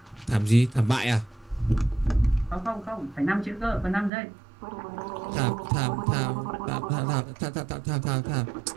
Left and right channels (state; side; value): drops out; left; at 4.1 s